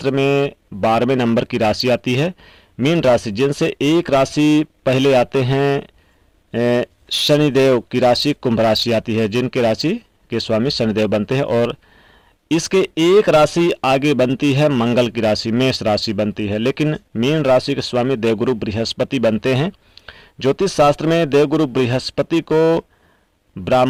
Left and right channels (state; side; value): identical; both; correlation 1.00